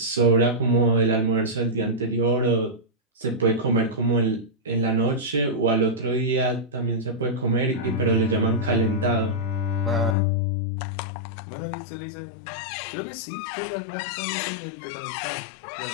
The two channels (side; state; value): right; drops out; at 10.2 s